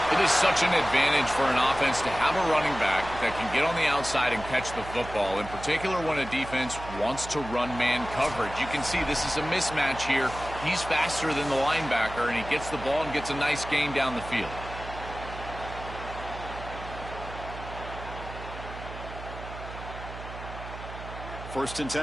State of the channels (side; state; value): right; noise; hum, 11 dB below the sound